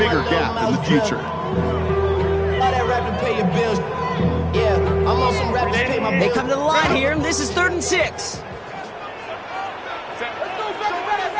gap in the future. They come to the line here, and this is 3rd and 6.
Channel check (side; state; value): both; identical; correlation 1.00